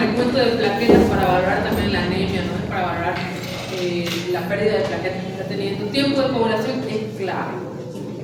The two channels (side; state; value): both; identical; correlation 1.00